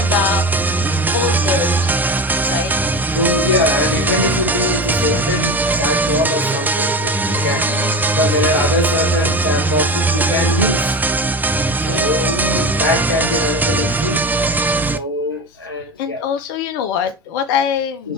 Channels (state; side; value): normal; both; correlation 0.25